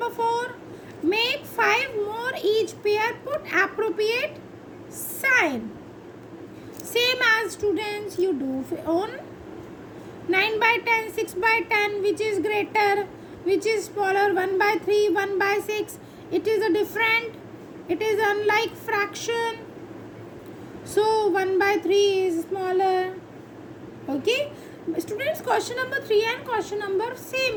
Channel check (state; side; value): identical; both; correlation 1.00